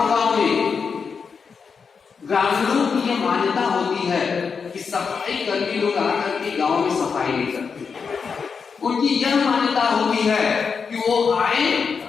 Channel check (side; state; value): right; quieter; 5.7 dB